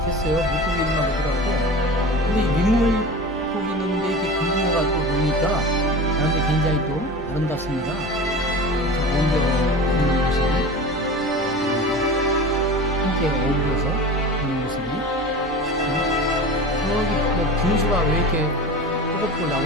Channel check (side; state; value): both; normal; correlation 0.34